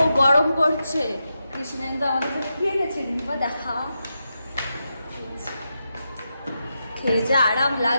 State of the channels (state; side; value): inverted; both; correlation -0.87